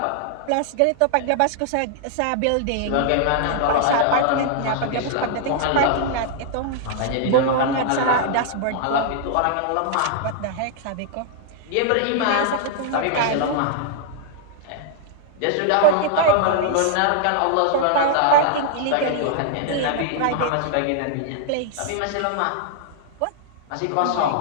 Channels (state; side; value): different; both; correlation -0.01